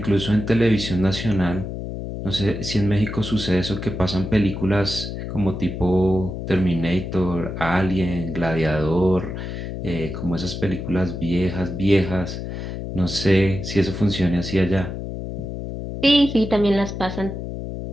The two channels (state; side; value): noise; left; hum, 6 dB below the sound